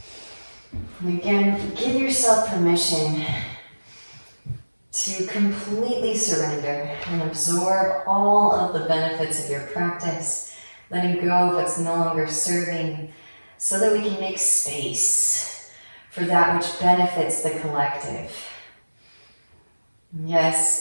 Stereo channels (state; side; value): inverted; both; correlation -1.00